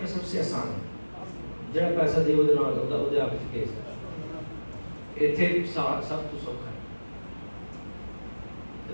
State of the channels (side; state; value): both; inverted; correlation -1.00